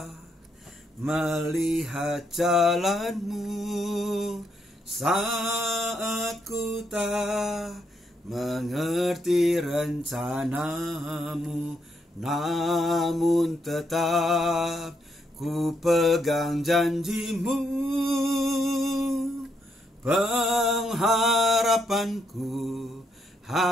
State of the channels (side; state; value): both; normal; correlation 0.77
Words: melihat jalanmu, saat ku tak mengerti rencanamu, namun tetap ku pegang janjimu. Pengharapanku